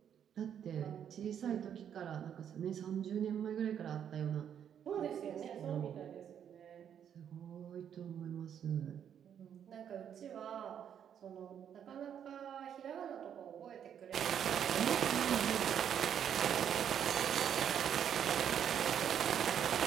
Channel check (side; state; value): left; quieter; 8.9 dB